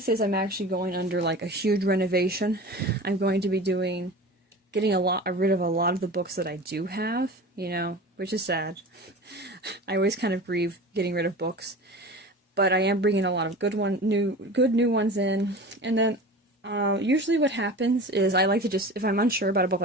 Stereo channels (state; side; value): normal; both; correlation 0.35